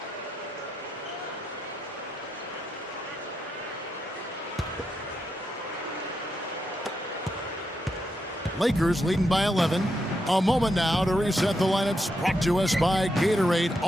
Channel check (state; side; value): normal; both; correlation 0.83